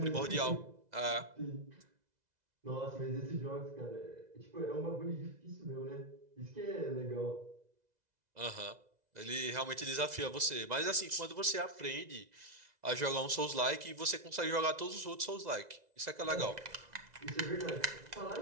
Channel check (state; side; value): late; left; 2.0 ms